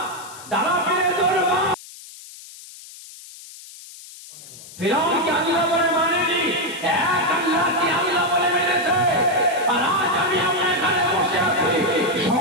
দাদা পীরের দরবার ফিরাউন কি আল্লাহ বলে মানেনি, এক আল্লাহ কি আল্লাহ বলে মেনেছে। আর আজ আমি আপনার এখানে বসে আছি,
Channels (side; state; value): left; noise; hiss, 17 dB below the sound